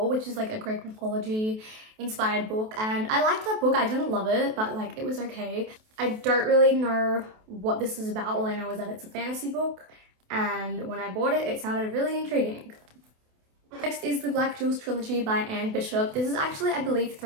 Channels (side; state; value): left; late; 28 ms